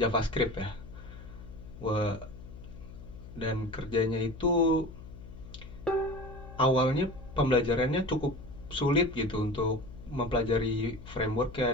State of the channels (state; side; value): noise; left; hum, 15 dB below the sound